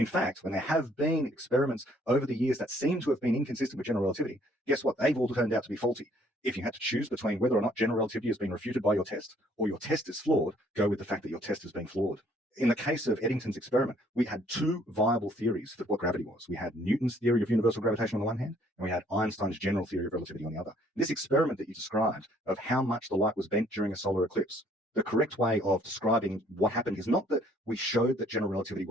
fact, when there have been experiments over the years that seem to have been inconsistent with general relativity, guess what? They've all turned out to be faulty. If you had to choose between whether or not general relativity has been refuted by your test or your test is flawed, go with the fact that your test has been flawed. In the case of Eddington's experiment, we had two viable theories for what gravity was. We had Newton's theory of universal gravitation on the one hand, and we had Einstein's general theory of relativity on the other. This experiment that you described of how much the light was bent during a solar eclipse, the correct way of describing what happened is not that we showed that general relativity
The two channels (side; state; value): both; normal; correlation 0.62